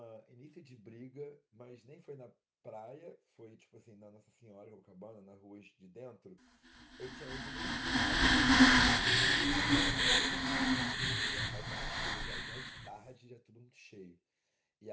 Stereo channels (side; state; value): both; identical; correlation 1.00